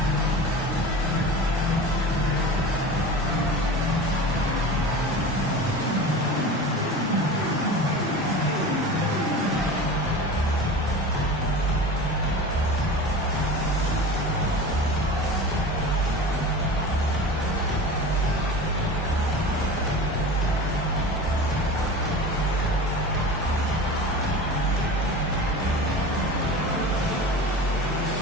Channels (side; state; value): both; normal; correlation 0.33